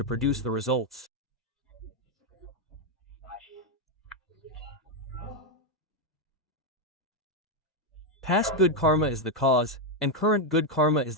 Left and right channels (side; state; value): both; normal; correlation 0.03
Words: produce the results. Past good karma is the cause, and current good karma is